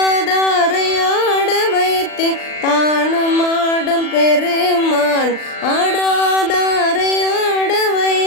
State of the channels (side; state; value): right; late; 39 ms